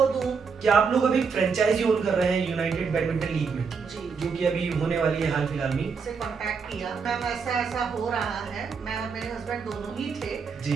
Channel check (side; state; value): left; quieter; 5.5 dB